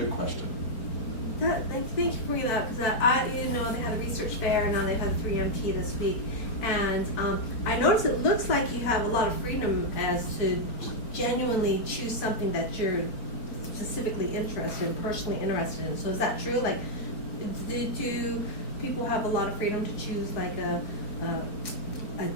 question. Thank you for bringing that up, because they had a research fair, and now they've had 3MT this week, and I noticed it looks like you have a lot of freedom as to genuinely choose something that you're specifically interested in, personally interested in. So is that true? Do people have a lot of freedom to choose a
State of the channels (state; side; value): late; right; 4.4 ms